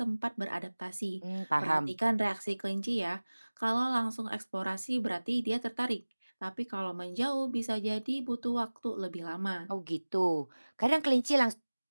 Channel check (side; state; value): both; inverted; correlation -1.00